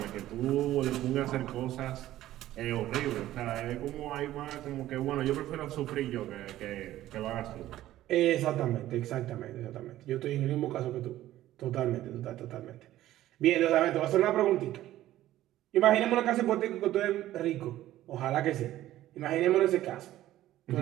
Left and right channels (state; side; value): quieter; left; 14.2 dB